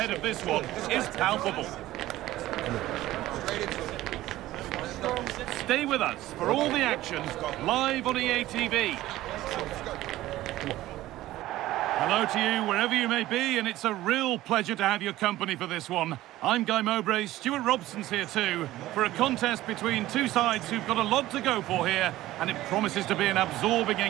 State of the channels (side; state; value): left; quieter; 15.7 dB